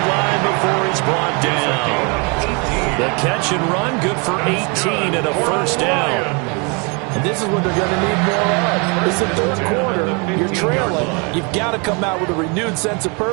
line before he's brought down. The catch and run, good for 18 and a first down. And this is what they're going to need more of. It's the third quarter. You're trailing. You've got to come out with a renewed sense of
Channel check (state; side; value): quieter; left; 32.2 dB